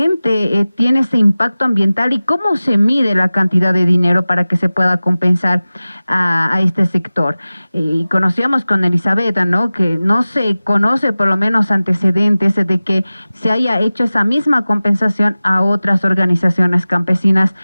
tiene ese impacto ambiental y cómo se mide la cantidad de dinero para que se pueda compensar a este sector? Y conocíamos con Elizabeth, ¿no?, que no se conoce por lo menos antecedentes de que se haya hecho esa misma compensación a otras organizaciones campesinas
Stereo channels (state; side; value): inverted; both; correlation -0.97